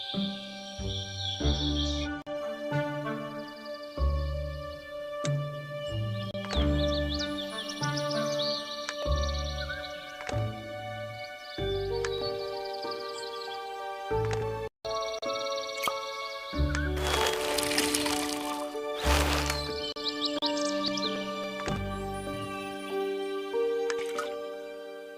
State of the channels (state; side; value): identical; both; correlation 1.00